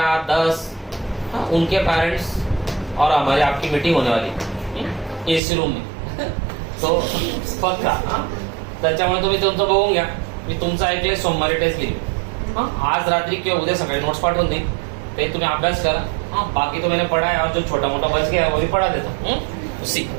10 उनके पेरेंट्स और हमारी आपकी मीटिंग होने वाली एसी रूम में. तो पक्का त्याच्यामुळे तुम्ही तुमचं बघून घ्या. मी तुमचं ऐकलंय सोमवारी टेस्ट घेईल. आज रात्री किंवा उद्या सकाळी नोट्स पाठवून देईन, ते तुम्ही अभ्यास करा. बाकी तो मैंने पढ़ा है और जो छोटा मोटा बच गया है वो भी पढ़ा देता हूँ उसी.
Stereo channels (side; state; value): left; drops out; at 5.4 s